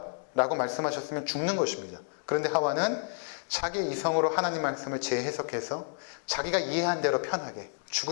라고 말씀하셨으면 죽는 것입니다. 그런데 하와는 자기 이성으로 하나님 말씀을 재해석해서 자기가 이해한 대로 편하게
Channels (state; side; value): silent; right; digital silence